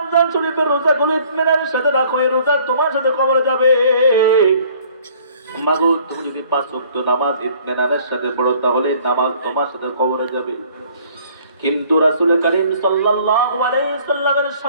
শরীফের রোজা গুলো ইতমিনানের সাথে রাখো, এই রোজা তোমার সাথে কবরে যাবে। মাগো, তুমি যদি 5 ওয়াক্ত নামাজ ইতমিনানের সাথে পড়ো, তাহলে নামাজ তোমার সাথে কবরে যাবে। কিন্তু রাসূল করিম সাল্লাল্লাহু আলাইহি সাল্লামের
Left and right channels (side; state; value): both; inverted; correlation -0.56